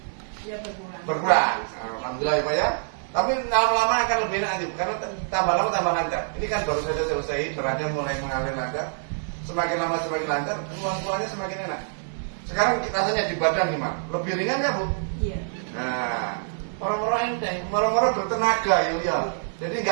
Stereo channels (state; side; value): silent; left; 61 dB below the other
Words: berkurang. berkurang. Alhamdulillah ya Pak ya. Tapi lama-lama akan lebih enak nanti karena tambah lama tambah lancar. Ini kan baru saja selesai, beratnya mulai mengalir lancar. Semakin lama semakin lancar, keluarnya semakin enak. Sekarang rasanya di badan gimana? Lebih ringan ya Bu? Iya. Nah, orang-orang enteng, orang-orang bertenaga ya. Jadi